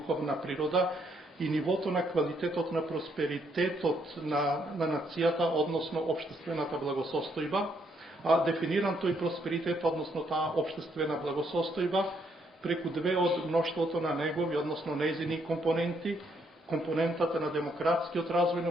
природа и нивото на квалитетот на просперитетот на нацијата, односно општествената благосостојба, а дефиниран тој просперитет, односно таа општествена благосостојба, преку две од мноштвото на негови, односно нејзини компоненти, компонентата на демократскиот развој на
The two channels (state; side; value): normal; both; correlation 0.72